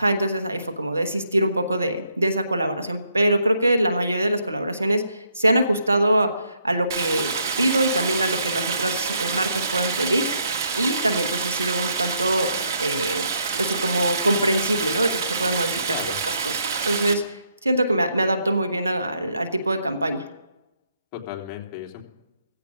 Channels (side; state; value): both; inverted; correlation -0.74